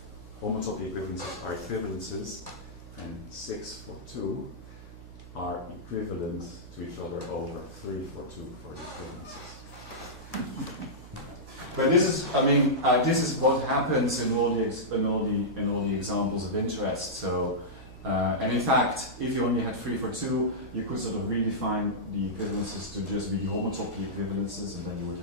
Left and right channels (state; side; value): noise; right; hum, 16 dB below the sound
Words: homotopy equivalences are equivalences and 6 for 2 are equivalent to each other over 3 for 2 for the equivalences. But this is, this is what happens in all the examples of interest. So, and in fact, if you only had 3 for 2, you could sort of redefine the equivalences to just be homotopy equivalences, and then you would